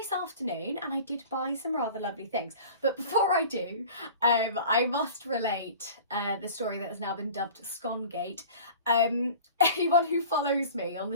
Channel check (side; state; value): both; inverted; correlation -0.41